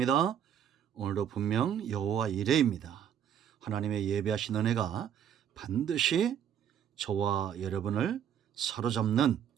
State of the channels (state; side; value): quieter; left; 9.2 dB